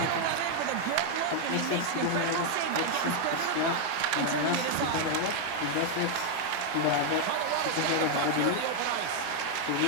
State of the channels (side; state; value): both; different; correlation 0.00